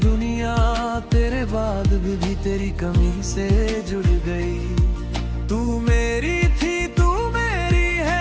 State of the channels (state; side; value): identical; both; correlation 1.00